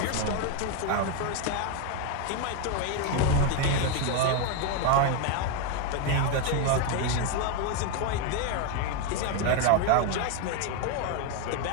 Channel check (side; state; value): both; different; correlation 0.02